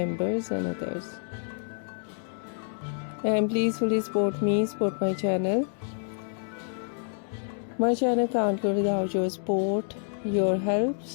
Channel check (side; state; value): right; silent; 59 dB below the other